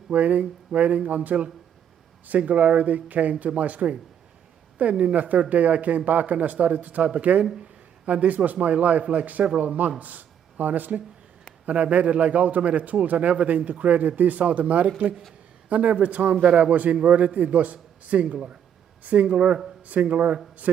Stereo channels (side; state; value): left; quieter; 9.0 dB